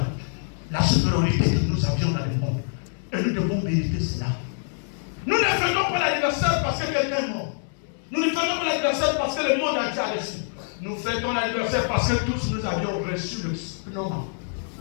la supériorité que nous avions dans le monde. Et nous devons mériter cela. Nous ne faisons pas l'anniversaire parce que quelqu'un est mort. Nous ne fêtons l'anniversaire parce que le monde entier a reçu. Nous fêtons l'anniversaire parce que tous nous avions reçu le nom.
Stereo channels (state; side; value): silent; right; digital silence